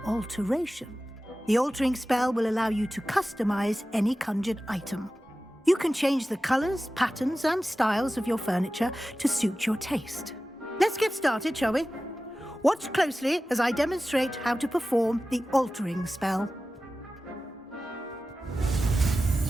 alteration. The altering spell will allow you to customize any conjured item. You can change the colors, patterns, and styles of your furniture to suit your taste. Let's get started, shall we? Watch closely as I demonstrate how to perform the altering spell.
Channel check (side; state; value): both; normal; correlation 0.95